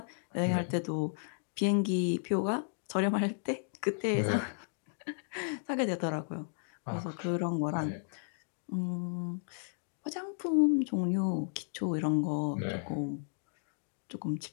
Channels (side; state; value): right; silent; digital silence